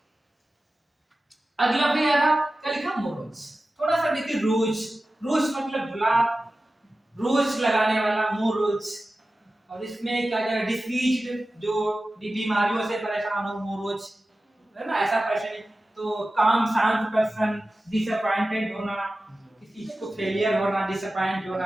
अगला भी आ रहा, क्या लिखा, मोरोज। थोड़ा सा देखिए, रोज, रोज मतलब गुलाब, रोज लगाने वाला मोरोज। और इसमें क्या क्या, डिसीज्ड, जो बीमारियों से परेशान हो, मोरोज है ना, ऐसा पर्सन। तो काम शांत पर्सन, डिसअपॉइंटेड होना, किसी चीज को फेलियर होना, डिसअपॉइंट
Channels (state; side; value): normal; both; correlation 0.95